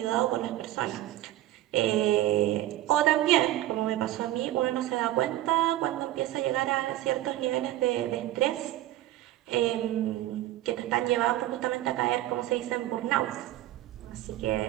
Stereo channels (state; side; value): quieter; left; 14.6 dB